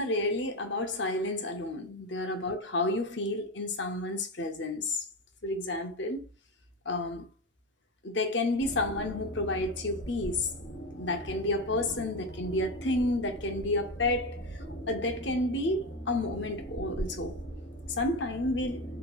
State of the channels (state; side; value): normal; both; correlation 0.18